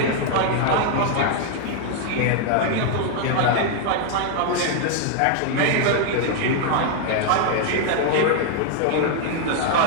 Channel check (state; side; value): different; both; correlation 0.00